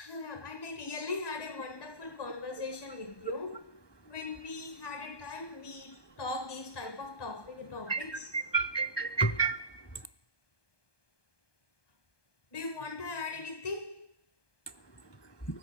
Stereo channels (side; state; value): right; late; 1.2 ms